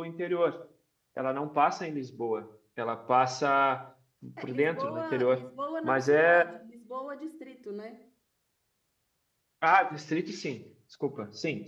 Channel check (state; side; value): identical; both; correlation 1.00